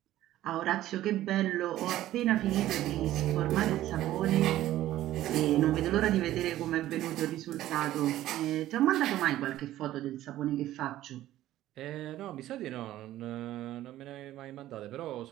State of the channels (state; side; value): quieter; left; 14.1 dB